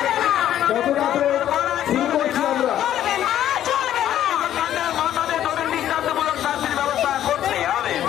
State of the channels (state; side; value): quieter; right; 11.5 dB